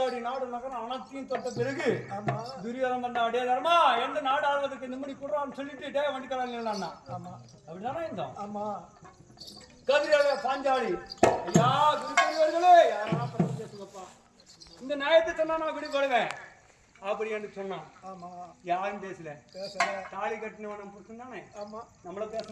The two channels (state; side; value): identical; both; correlation 1.00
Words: நாடு நகரம் அனைத்தையும் தொட்ட பிறகு துரியோதனம் பண்ண அடே தர்மா எந்த நாடு ஆள்வதற்கு நிம்மதி கொடுறான்னு சொல்லிட்டு டே வண்டிக்கிறாங்க. அப்படிதானே இருந்தோம். ஆமா. கதிரால பாஞ்சாலி ஐயா குருக்கர்களே யாரா பேசுங்கப்பா இந்த நியாயத்தை சொன்னா நான் விடுபடுவேன் அப்படி என்று சொன்னான். ஆமா. யாரும் பேசல. தாலி கட்டினவனும் புருஷன் தானே. ஆமா. நம்மள